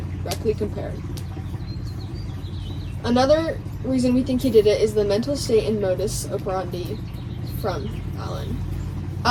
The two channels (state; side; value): identical; both; correlation 1.00